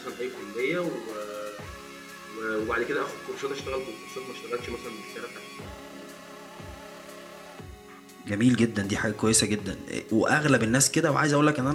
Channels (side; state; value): both; identical; correlation 1.00